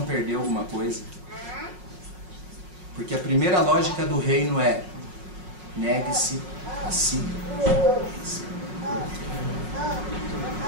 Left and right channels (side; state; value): left; late; 5.5 ms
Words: perdeu alguma coisa. Porque a primeira lógica do reino é negue-se a si.